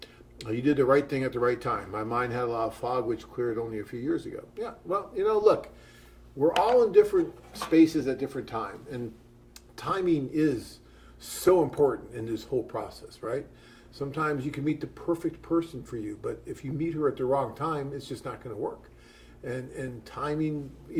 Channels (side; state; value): both; identical; correlation 1.00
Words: You did the right thing at the right time. My mind had a lot of fog, which cleared only a few years ago. Yeah, well, look, we're all in different spaces at different times. And timing is so important in this whole process, right? Sometimes you can meet the perfect person for you, but if you meet her at the wrong time, it's just not going to work. And timing,